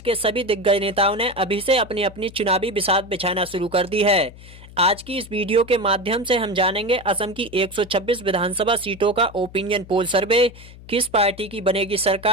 के सभी दिग्गज नेताओं ने अभी से अपनी अपनी चुनावी बिसात बिछाना शुरू कर दी है। आज की इस वीडियो के माध्यम से हम जानेंगे असम की 126 विधानसभा सीटों का ओपिनियन पोल सर्वे, किस पार्टी की बनेगी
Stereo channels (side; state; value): left; noise; hum, 19 dB below the sound